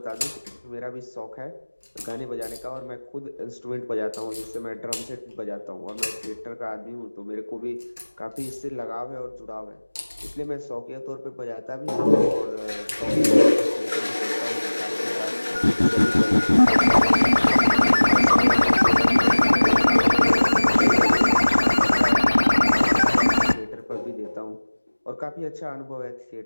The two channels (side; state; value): both; inverted; correlation -1.00